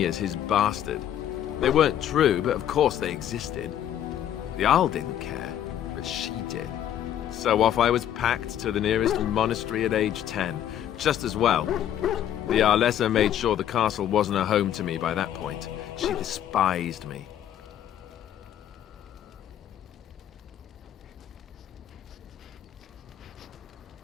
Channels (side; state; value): right; quieter; 10.7 dB